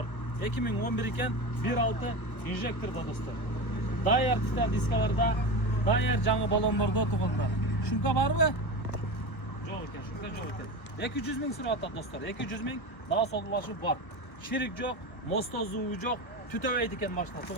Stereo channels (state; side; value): late; right; 1.3 ms